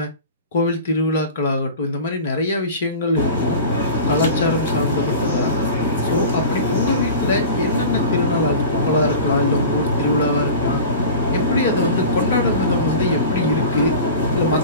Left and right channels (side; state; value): both; inverted; correlation -0.36